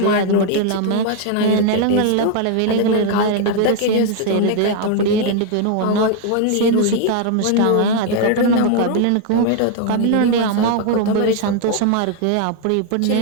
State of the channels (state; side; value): different; both; correlation 0.00